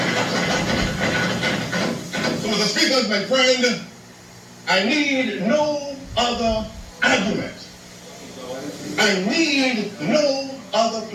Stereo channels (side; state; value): both; identical; correlation 1.00